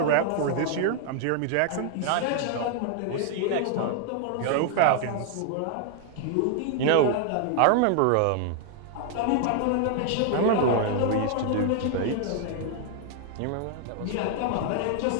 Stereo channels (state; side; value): different; both; correlation 0.00